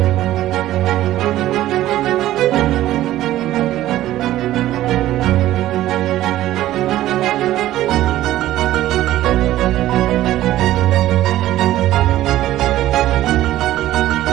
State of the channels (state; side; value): quieter; left; 14.4 dB